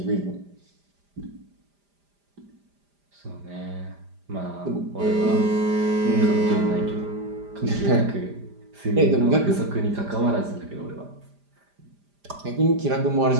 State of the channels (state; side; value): late; left; 5.0 ms